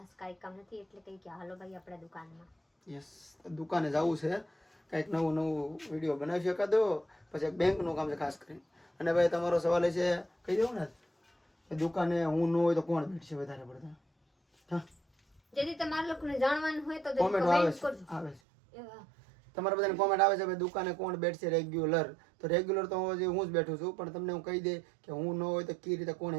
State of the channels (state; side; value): drops out; left; at 18.4 s